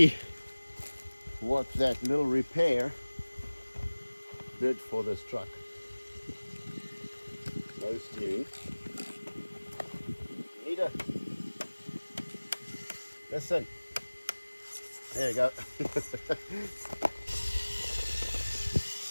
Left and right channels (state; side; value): inverted; both; correlation -1.00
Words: what that little repair did for this truck. No steering. Nita, listen. There you go.